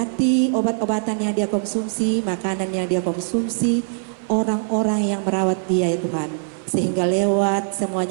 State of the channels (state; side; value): silent; left; 57 dB below the other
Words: obat-obatan yang dia konsumsi, makanan yang dia konsumsi, orang-orang yang merawat dia ya Tuhan, sehingga lewat